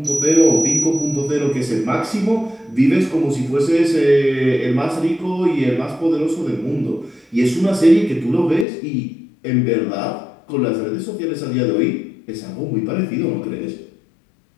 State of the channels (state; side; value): drops out; right; at 8.7 s